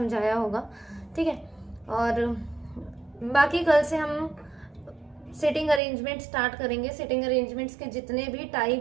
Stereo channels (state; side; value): drops out; left; at 5.8 s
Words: होगा, ठीक है। और बाकी कल से हम सिटिंग अरेंजमेंट स्टार्ट करेंगे। सिटिंग अरेंजमेंट्स के जितने भी